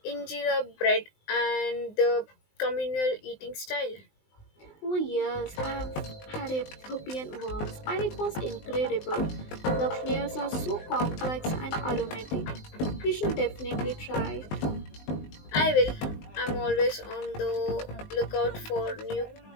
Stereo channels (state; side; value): late; right; 19 ms